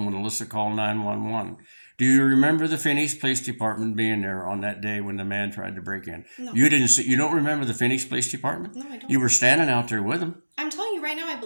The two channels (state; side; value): inverted; both; correlation -1.00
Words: when Alyssa called 911. Do you remember the Phoenix Police Department being there on that day when the man tried to break in? No. You didn't see, you don't remember the Phoenix Police Department? No, I don't. You were standing out there with them. I'm telling you right now, I